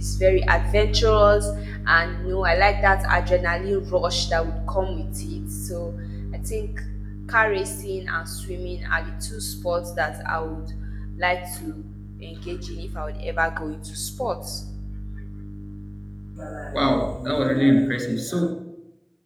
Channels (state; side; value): identical; both; correlation 1.00